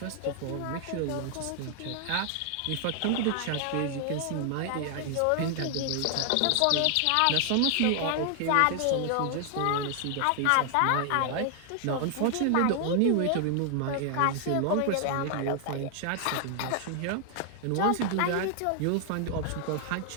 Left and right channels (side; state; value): both; different; correlation 0.00